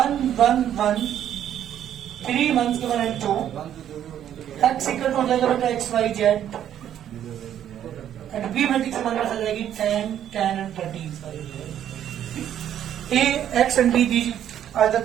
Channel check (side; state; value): left; quieter; 10.4 dB